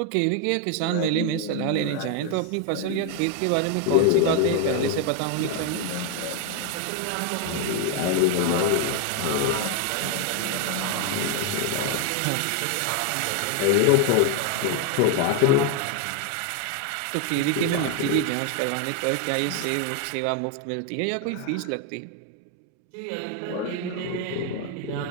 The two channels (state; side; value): different; both; correlation 0.00